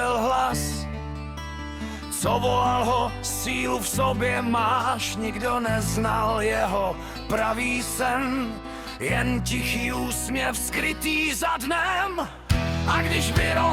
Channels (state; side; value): identical; both; correlation 1.00